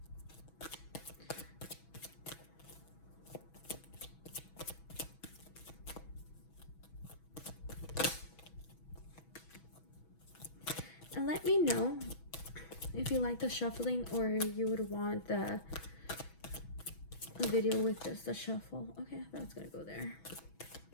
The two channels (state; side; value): late; right; 6.1 ms